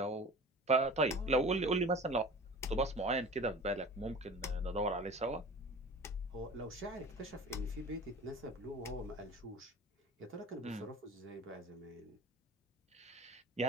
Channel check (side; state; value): both; normal; correlation 0.39